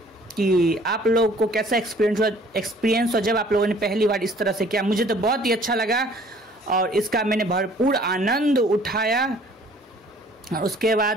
कि आप लोगों को कैसा एक्सपीरियंस हो जब आप लोगों ने पहली बार इस तरह से किया। मुझे तो बहुत ही अच्छा लगा और इसका मैंने भरपूर आनंद उठाया। और उसके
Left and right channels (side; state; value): both; normal; correlation 0.55